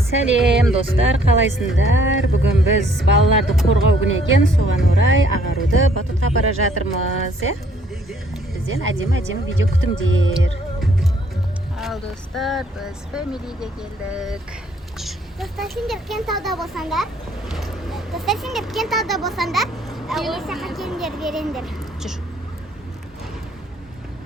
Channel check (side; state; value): both; normal; correlation 0.63